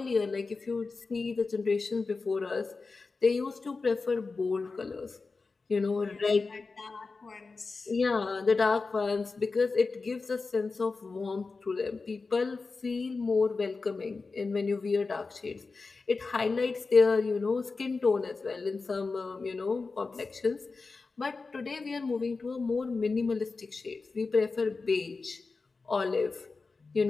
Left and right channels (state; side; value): quieter; right; 4.1 dB